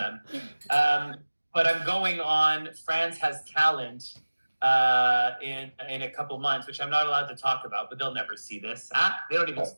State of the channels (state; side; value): inverted; both; correlation -1.00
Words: But I'm going on France Has Talent in a couple months, which I'm not allowed to talk about, but they'll never see this. They don't even